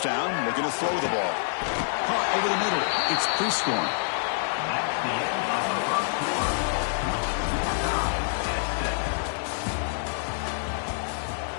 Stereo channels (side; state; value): right; silent; digital silence